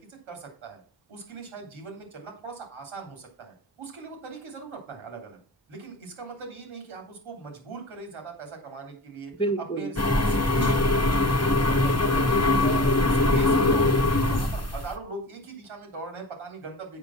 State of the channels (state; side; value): normal; both; correlation 0.35